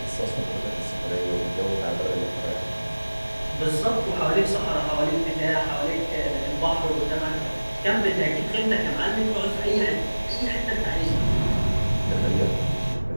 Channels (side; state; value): both; inverted; correlation -1.00